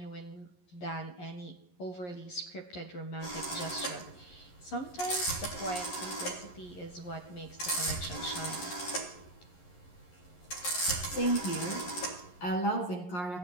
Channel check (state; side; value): late; right; 11 ms